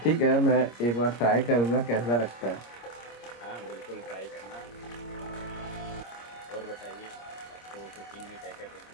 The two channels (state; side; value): late; right; 26 ms